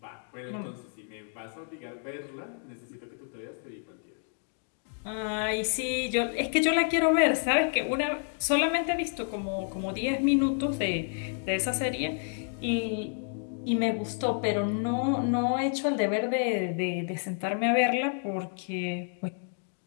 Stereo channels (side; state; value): right; silent; 55 dB below the other